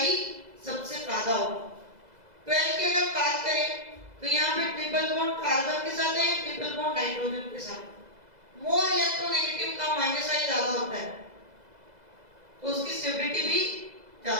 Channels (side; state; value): left; late; 2.0 ms